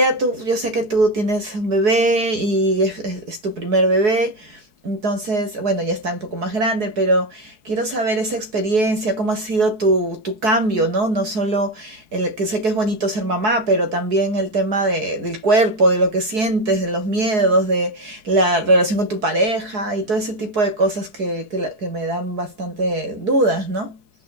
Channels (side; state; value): left; late; 4.7 ms